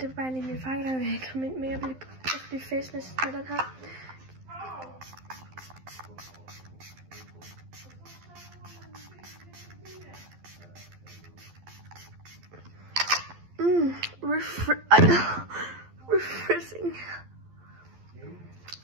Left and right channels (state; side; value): late; left; 12 ms